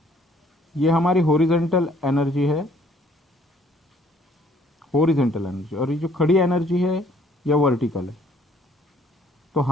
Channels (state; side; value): normal; both; correlation 0.61